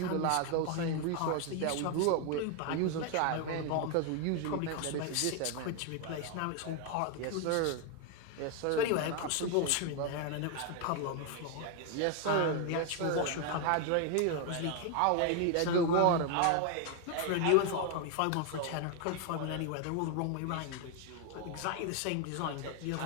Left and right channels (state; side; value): different; both; correlation 0.01